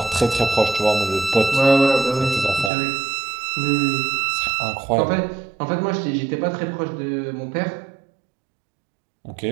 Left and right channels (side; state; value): left; drops out; at 2.7 s